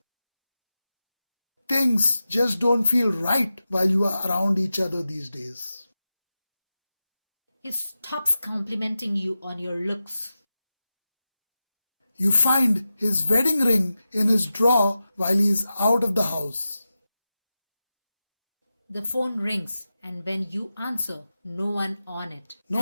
Things just don't feel right while you are around each other these days. He stops complimenting you on your looks. You find his wedding ring in his drawer while he is out of the house. The phone rings, and when you answer, no one on it.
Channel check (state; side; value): inverted; both; correlation -0.92